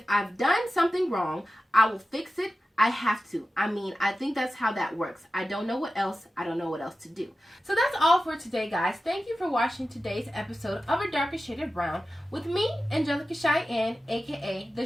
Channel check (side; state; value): both; normal; correlation 0.93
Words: I've done something wrong, I will fix it. I have to. I think that's how that works. I don't know what else to do." So that's all for today, guys. Thank you for watching today's episode of A Darker Shade of Brown with me, Angelica Cheyenne, aka the